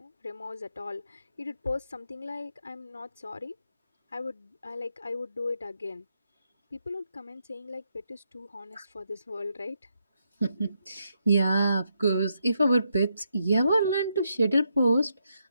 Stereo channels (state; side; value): inverted; both; correlation -0.80